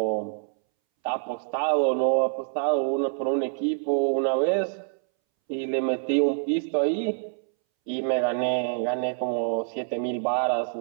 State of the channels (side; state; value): left; silent; 61 dB below the other